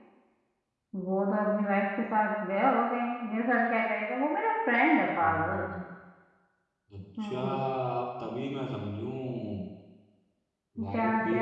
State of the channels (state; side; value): identical; both; correlation 1.00